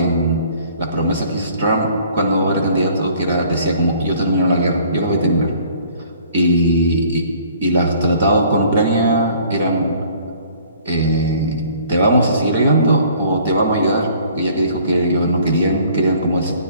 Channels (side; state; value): both; inverted; correlation -0.55